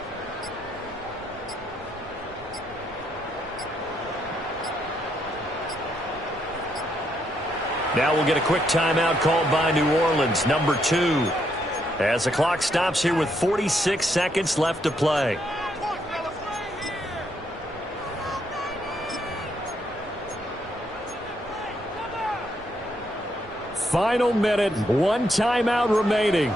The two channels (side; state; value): right; noise; rumble, 22 dB below the sound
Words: Now we'll get a quick timeout called by New Orleans, number 2. As the clock stops here with 46 seconds left to play. Final minute, 1 timeout remaining.